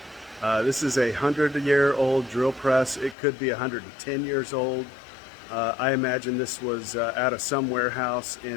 This is a 100-year-old drill press. It could be 110 years old. I imagine this was out of some warehouse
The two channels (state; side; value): drops out; right; at 3.2 s